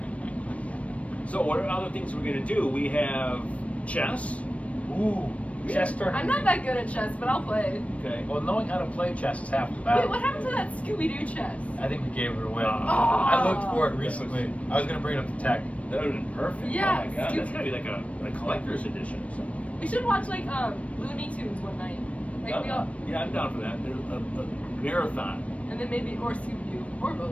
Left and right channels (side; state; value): right; late; 0.064 ms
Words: So what are other things we're going to do? We have chess. Ooh. Chess tournament. I'm not that good at chess, but I'll play. Okay. Well, knowing how to play chess is half the Wait, battle. what happened to that Scooby-Doo chess? I think we gave it away. Oh. I looked for it recently. I was gonna bring it up to tech. That would have been perfect. Yeah, Oh my god, Scoop- that's gotta be like a collector's edition or something. We should watch like Looney Tunes one night. Like we all, Yeah, I'm down for that. A marathon. and then maybe or Scooby-Doo or